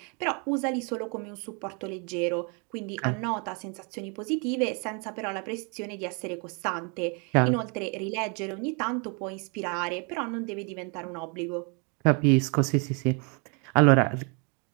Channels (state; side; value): quieter; left; 34.7 dB